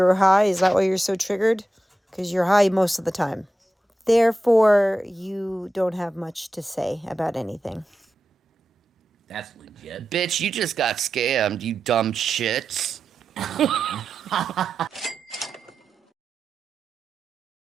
high, is that why you're so triggered? Because you're high most of the time. Therefore, you don't have much to say about anything. That's legit. Bitch, you just got scammed, you dumb shits.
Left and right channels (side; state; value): both; normal; correlation 0.91